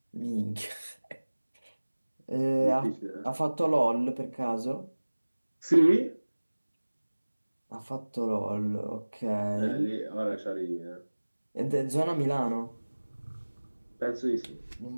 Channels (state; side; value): inverted; both; correlation -1.00